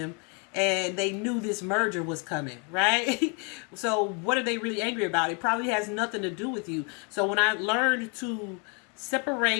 and they knew this merger was coming, right? So what are they really angry about? It probably has nothing to do with you. So when I learned to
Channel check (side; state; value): right; quieter; 35.2 dB